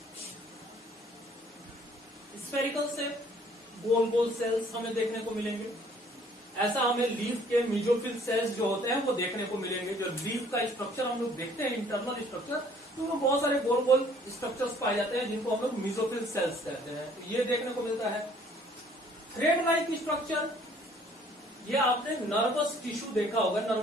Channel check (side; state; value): both; normal; correlation 0.58